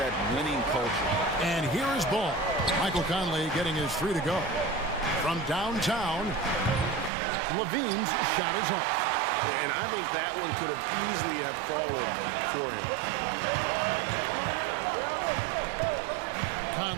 winning culture. And here is Ball. Michael Conley getting his 3 to go. From downtown, Levine's shot is off. And I think that one could have easily have fallen for him.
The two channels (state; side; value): drops out; left; at 7.1 s